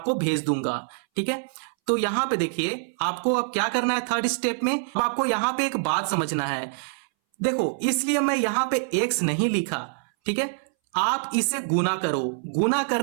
भेज दूंगा, ठीक है। तो यहां पे देखिए आपको अब क्या करना है, थर्ड स्टेप में अब आपको यहां पे एक बात समझना है। देखो इसलिए मैं यहां पे x नहीं लिखा, ठीक है। आप इसे गुना करो, गुना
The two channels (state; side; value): silent; left; 61 dB below the other